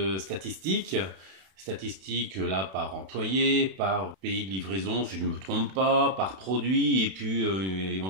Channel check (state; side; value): late; left; 31 ms